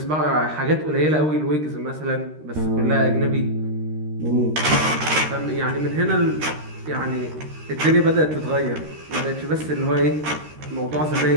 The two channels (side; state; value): left; late; 13 ms